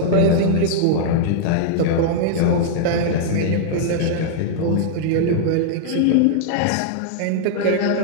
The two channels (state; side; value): different; both; correlation -0.01